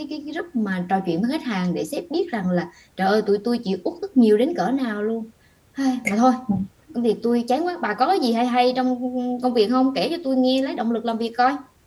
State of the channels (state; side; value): identical; both; correlation 1.00